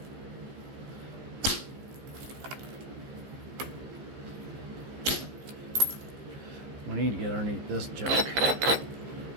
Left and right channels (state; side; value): late; left; 15 ms